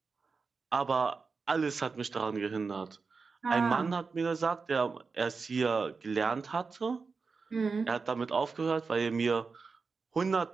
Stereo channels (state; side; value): quieter; left; 4.7 dB